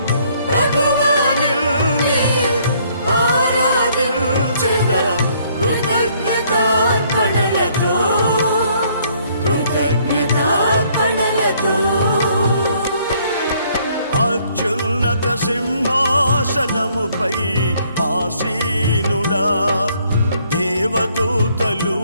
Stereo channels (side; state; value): both; inverted; correlation -0.65